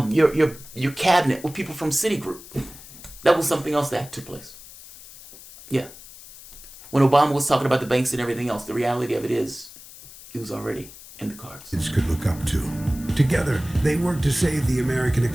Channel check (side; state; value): left; noise; hiss, 18 dB below the sound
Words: cabinet with people from Citigroup? That was something else that took place. Yeah. When Obama was talking about the banks and everything else, the reality of it is, it was already in the cards. Could look up to. Together, they worked to save the American